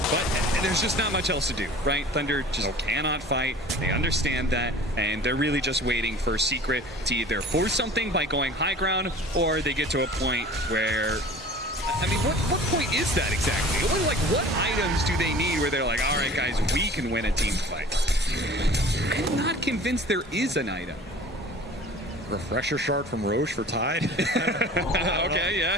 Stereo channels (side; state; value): both; normal; correlation 0.43